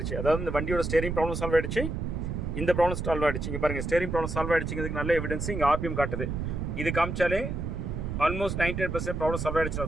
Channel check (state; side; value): noise; right; rumble, 3 dB below the sound